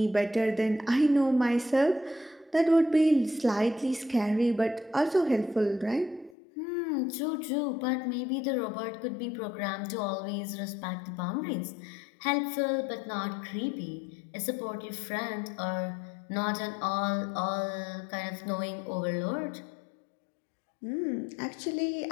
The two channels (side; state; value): right; drops out; at 6.4 s